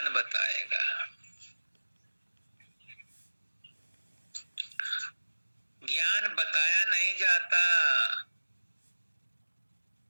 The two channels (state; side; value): inverted; both; correlation -1.00